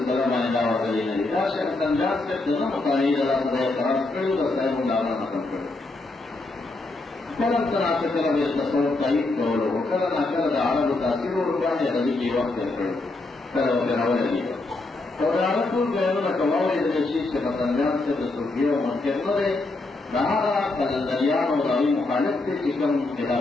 مانے دعوہ کری نلی دا شیخ سنجاد سے دنا مطالعی دا خدای قرار کرو دا صاحب مدامہ ختم کرو کلم تناسے کلم اس تصور قائد کرو کلم اکل دا عرب تاثیر و رکانی غزی کی وقت کرو کلم اکراوہ لگی اور عرب کل گئنو نکواوی دا شیخ سے سنجاد سے دسوکیو منکر نرے دہارا قلندریان و دعوی مخالف تے چکم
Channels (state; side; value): quieter; right; 3.1 dB